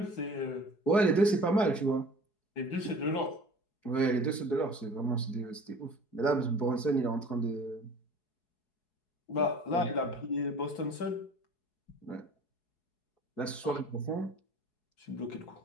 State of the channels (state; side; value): late; right; 4.7 ms